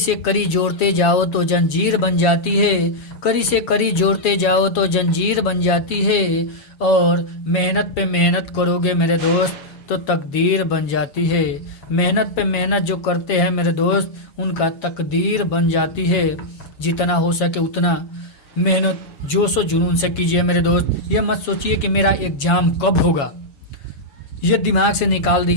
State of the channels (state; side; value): late; right; 7.3 ms